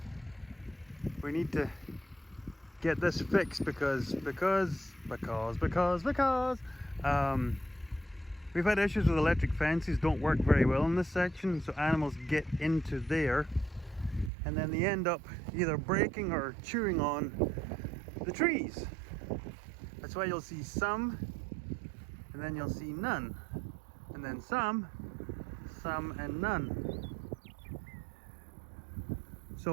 need to get this fixed because we've had issues with electric fences, don't work very well in this section, so animals get into there and then they end up either breaking or chewing on the trees. That's why you'll see some, and then you'll see none, and then some and none.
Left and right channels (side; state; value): left; drops out; at 14.3 s